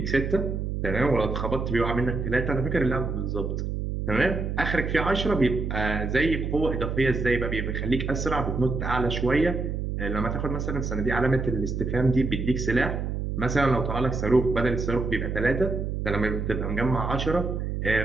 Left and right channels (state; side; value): noise; right; hum, 2 dB below the sound